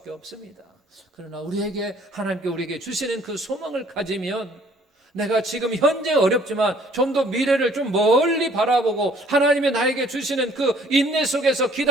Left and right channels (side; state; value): both; normal; correlation 0.59